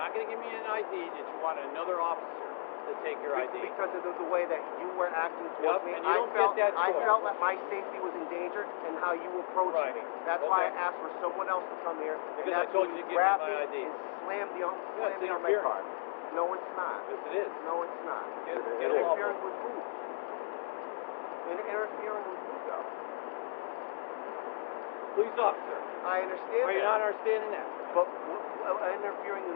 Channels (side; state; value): right; silent; digital silence